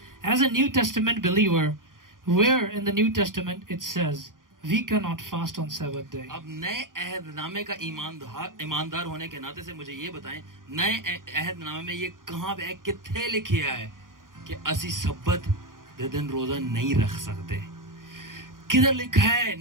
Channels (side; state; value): left; late; 0.90 ms